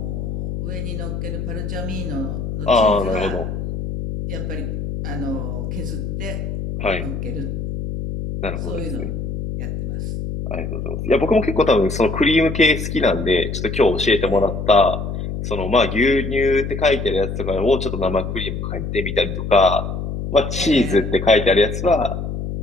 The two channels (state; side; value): noise; left; hum, 4 dB below the sound